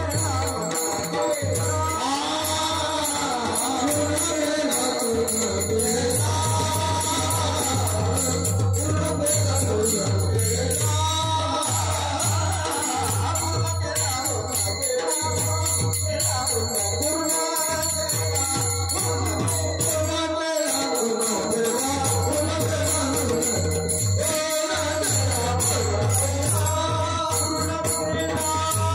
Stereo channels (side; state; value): both; identical; correlation 1.00